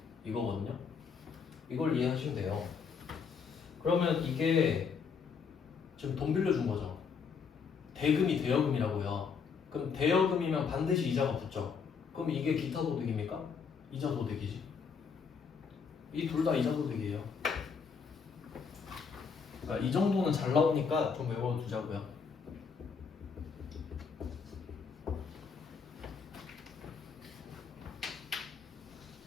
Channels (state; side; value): quieter; right; 5.9 dB